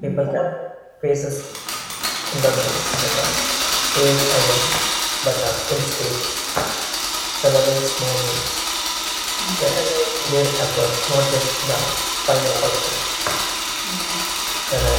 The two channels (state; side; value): identical; both; correlation 1.00